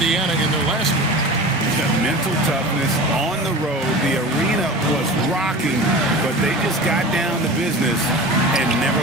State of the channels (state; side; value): normal; both; correlation 0.34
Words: in their last game. The mental toughness on the road. The arena was rocking, but they just got down to business and never